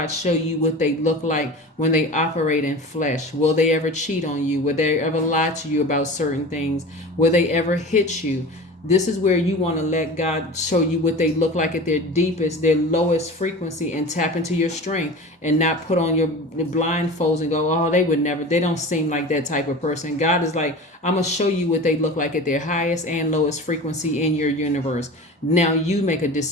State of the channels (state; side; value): normal; both; correlation 0.34